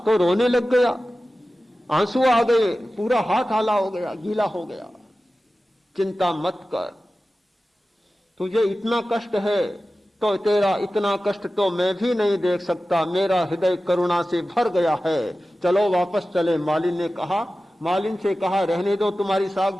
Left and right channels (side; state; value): both; normal; correlation 0.95